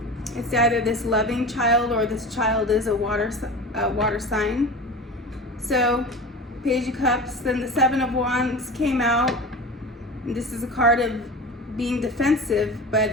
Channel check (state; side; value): normal; both; correlation 0.32